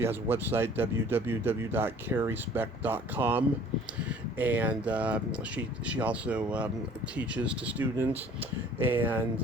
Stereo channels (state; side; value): normal; both; correlation 0.51